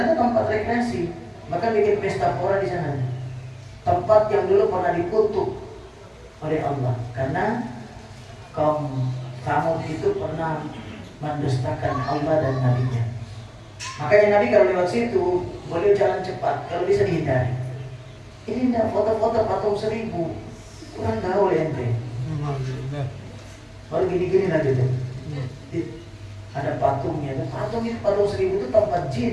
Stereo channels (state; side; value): identical; both; correlation 1.00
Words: itu tempat rekreasi. Bahkan bikin pesta pora di sana. Tempat yang dulu pernah dikutuk oleh Allah karena kaum Tsamud itu pernah mendustakan Allah dan Nabi-Nya. Makanya Nabi kalau lewat situ boleh jalan cepat kalau bisa dihindari. Ini enggak foto-foto patung 1000, kurang gaul ente. Baru gini-gini aja tuh. Ada patungnya, patung 1000 itu tempat